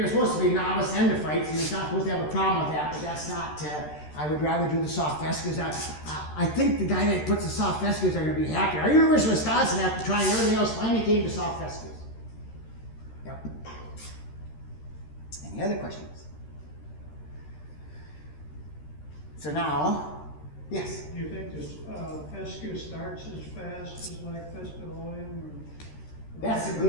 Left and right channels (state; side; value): late; right; 13 ms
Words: supposed to be novice endophytes, and you're not supposed to have a problem with that, but that's not, I would rather do the soft fescues. I think the guy that puts the soft fescues are going to be happy. Our University of Wisconsin, after trying everything else, finally came to soft fescues. Yep. Any other questions? So now, Yes. Do you think this fescue starts as fast as like fesculatum? That's a